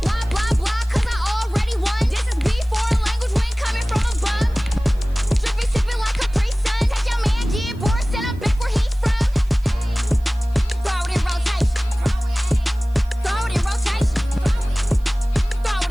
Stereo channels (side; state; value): right; noise; hiss, 29 dB below the sound